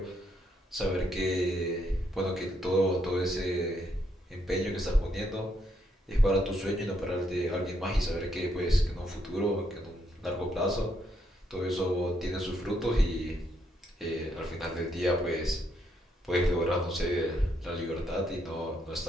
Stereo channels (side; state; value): both; normal; correlation 0.75